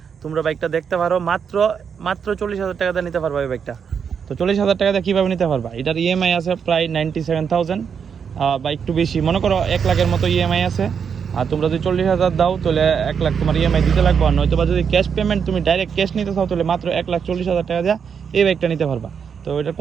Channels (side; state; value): left; quieter; 6.9 dB